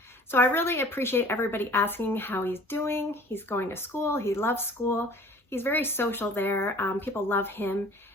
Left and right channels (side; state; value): both; normal; correlation 0.48